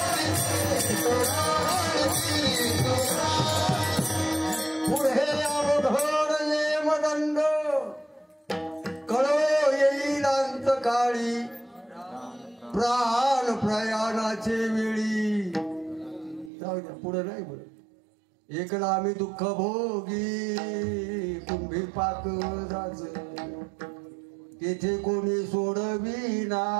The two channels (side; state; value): left; drops out; at 16.5 s